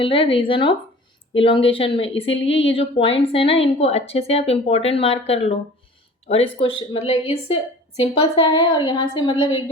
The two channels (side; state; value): both; normal; correlation 0.44